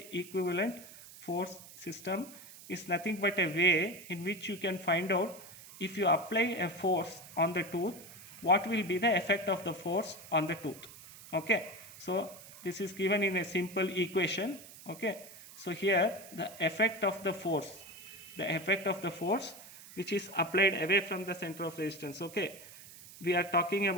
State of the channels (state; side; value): noise; right; hiss, 17 dB below the sound